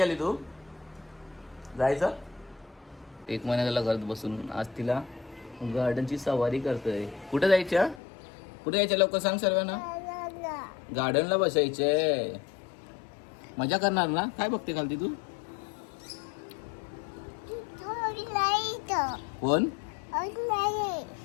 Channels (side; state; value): right; drops out; at 8.0 s